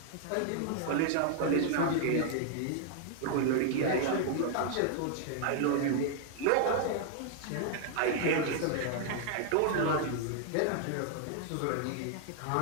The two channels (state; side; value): different; both; correlation 0.00